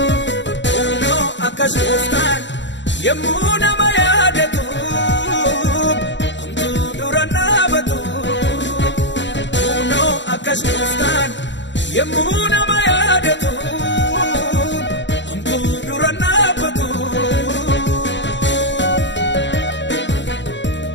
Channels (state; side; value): late; right; 0.53 ms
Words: kunoo akkas gooftaan yemmuu nama yaadatu homtuu dura dhaabatu kunoo akkas gooftaan yemmuu nama yaadatu homtuu dura dhaabatu.